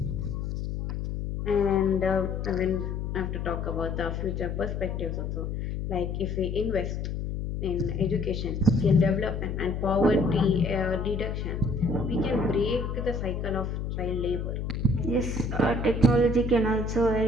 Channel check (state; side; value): noise; left; hum, 3 dB below the sound